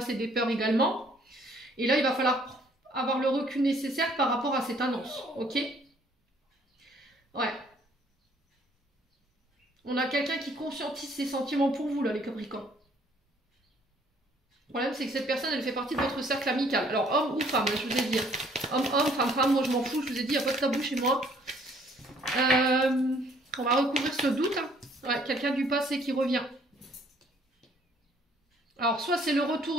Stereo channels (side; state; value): both; normal; correlation 0.61